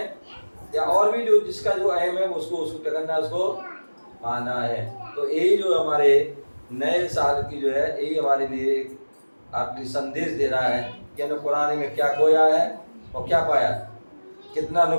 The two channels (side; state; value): both; inverted; correlation -1.00